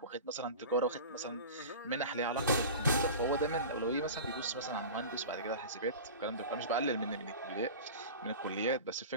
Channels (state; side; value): inverted; both; correlation -0.33